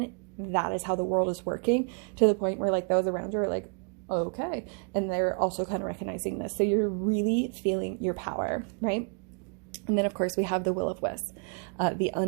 that is how the world is working, to the point where like those around you are like, okay, and they're also kind of recognizing this. So you're really feeling your power, right? And then of course we have the will of wisp, the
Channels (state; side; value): quieter; left; 39.7 dB